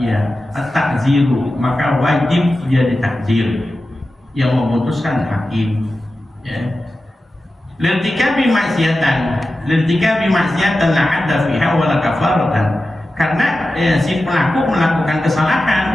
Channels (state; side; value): normal; both; correlation 0.93